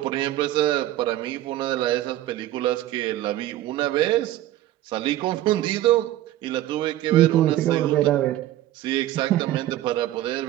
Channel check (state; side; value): quieter; left; 14.3 dB